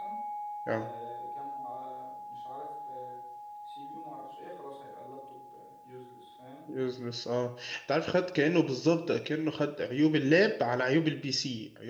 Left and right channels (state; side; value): identical; both; correlation 1.00